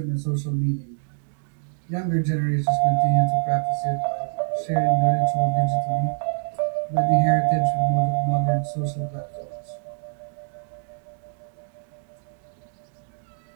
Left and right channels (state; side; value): silent; left; 57 dB below the other